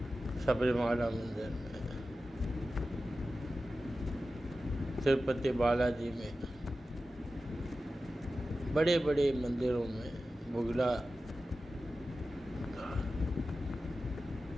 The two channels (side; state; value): both; normal; correlation 0.93